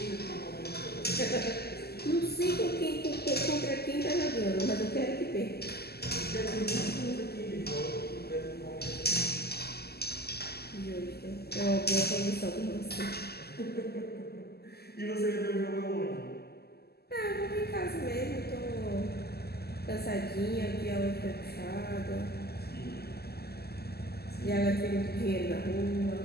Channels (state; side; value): late; right; 0.46 ms